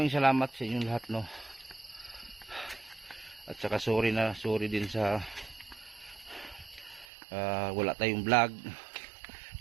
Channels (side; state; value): left; drops out; at 7.1 s